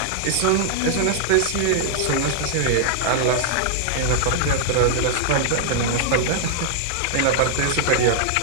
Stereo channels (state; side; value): different; both; correlation -0.01